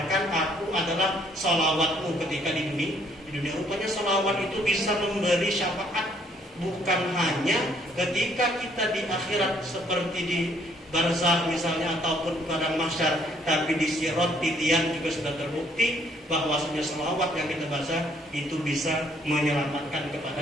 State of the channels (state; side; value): normal; both; correlation 0.65